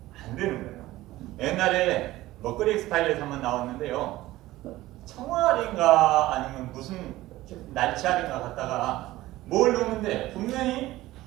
안 되는 거예요. 옛날에 먹거리 엑스파일에서 한번 나왔는데요. 청알인가 아니면 무슨 날치알인가 갖다가 뭘 넣는데 분명히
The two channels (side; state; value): left; quieter; 16.9 dB